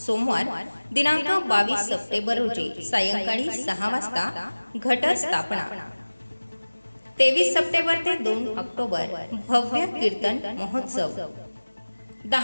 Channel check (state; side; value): inverted; both; correlation -1.00